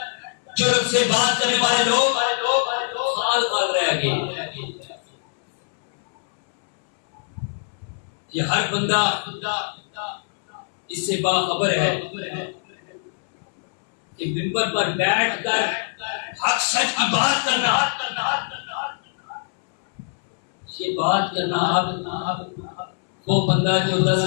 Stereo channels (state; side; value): silent; right; 62 dB below the other